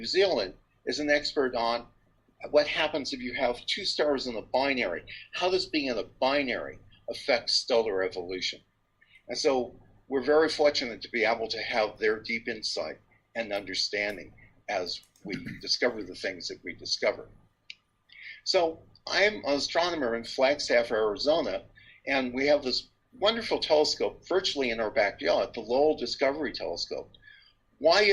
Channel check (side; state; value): both; identical; correlation 1.00